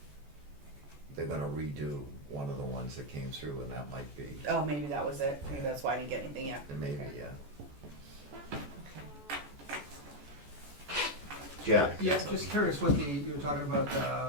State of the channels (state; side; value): late; left; 14 ms